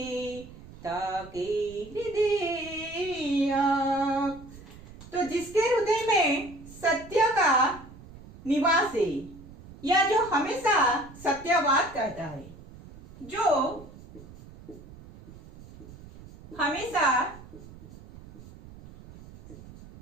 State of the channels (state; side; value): noise; right; rumble, 18 dB below the sound